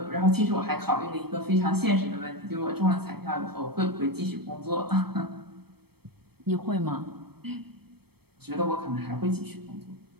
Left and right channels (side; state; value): left; late; 0.97 ms